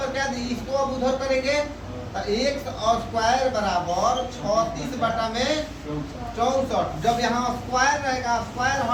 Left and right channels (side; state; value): both; identical; correlation 1.00